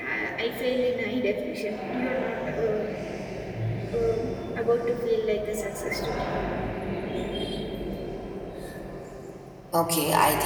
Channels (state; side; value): identical; both; correlation 1.00